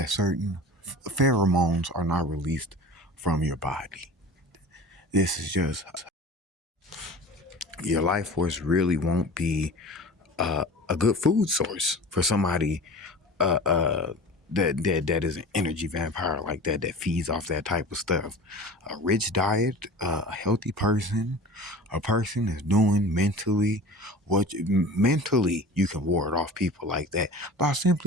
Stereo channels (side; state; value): both; normal; correlation 0.37